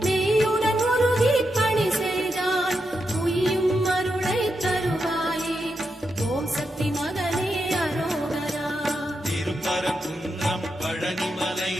மெய்யுடன் உருகி பணி செய்தால் உய்யும் அருளை தருவாயே. ஓம் சக்தி மகனே அரோகரா. திருப்பரங்குன்றம் பழனிமலை,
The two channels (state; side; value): normal; both; correlation 0.85